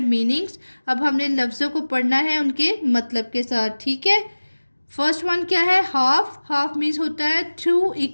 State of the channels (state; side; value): inverted; both; correlation -1.00